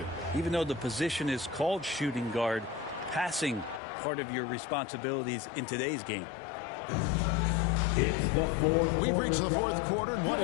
Even though the position is called shooting guard, passing part of your responsibilities in today's game. We've reached the fourth quarter, and what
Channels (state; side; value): drops out; right; at 3.8 s